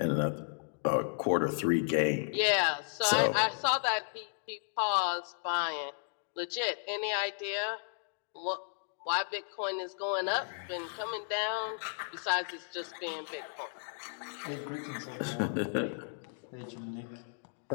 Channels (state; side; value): silent; right; digital silence